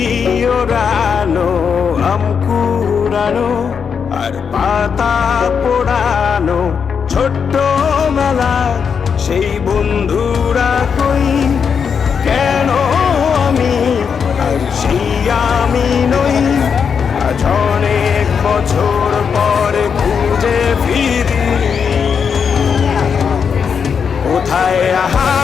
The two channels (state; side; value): quieter; right; 6.6 dB